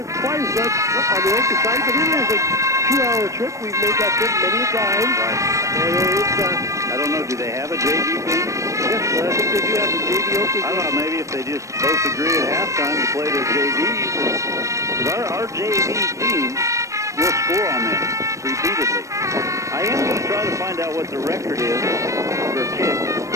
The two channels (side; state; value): left; late; 0.15 ms